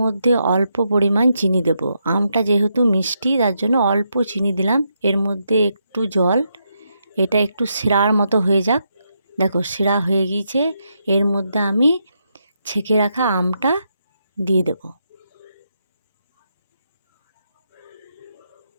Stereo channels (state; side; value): inverted; both; correlation -0.81